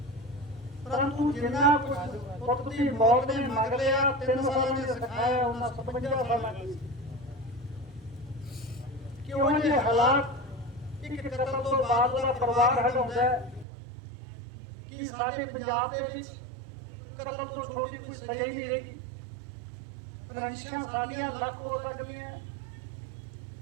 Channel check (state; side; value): drops out; left; at 13.7 s